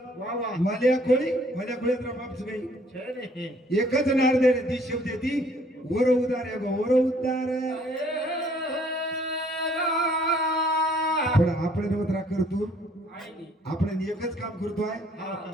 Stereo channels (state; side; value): normal; both; correlation 0.61